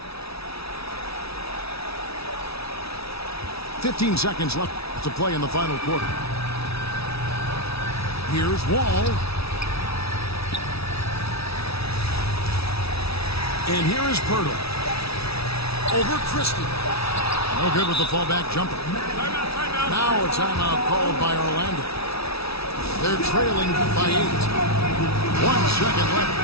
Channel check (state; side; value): late; right; 0.77 ms